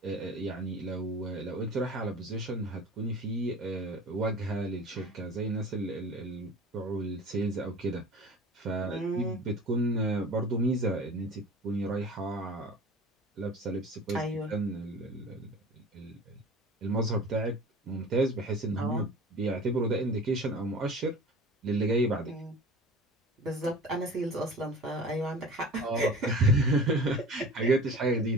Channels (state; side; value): normal; both; correlation 0.40